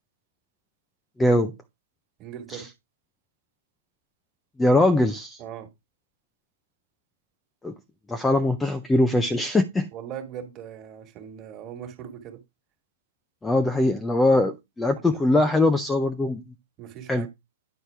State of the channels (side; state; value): both; normal; correlation 0.82